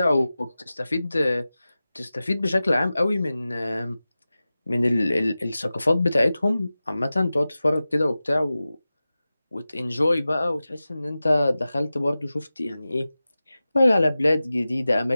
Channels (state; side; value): inverted; both; correlation -0.96